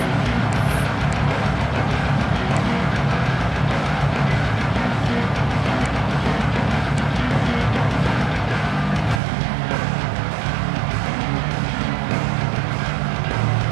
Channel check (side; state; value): left; drops out; at 9.2 s